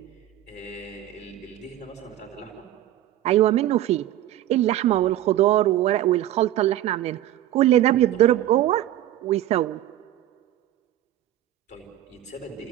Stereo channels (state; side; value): quieter; left; 13.1 dB